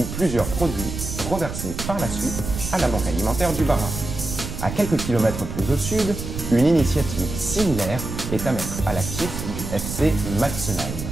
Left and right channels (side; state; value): right; noise; rumble, 7 dB below the sound